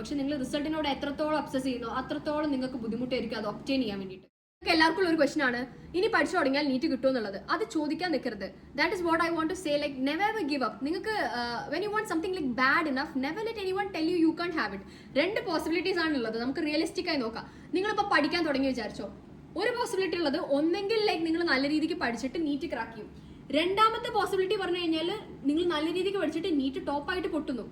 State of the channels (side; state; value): both; identical; correlation 1.00